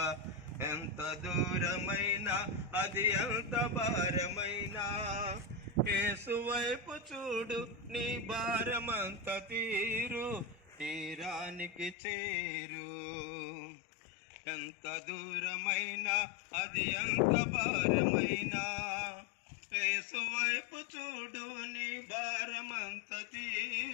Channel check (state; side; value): drops out; right; at 12.0 s